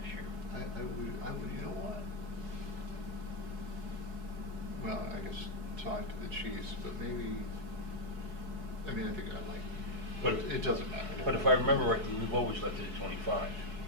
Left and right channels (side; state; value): left; late; 4.7 ms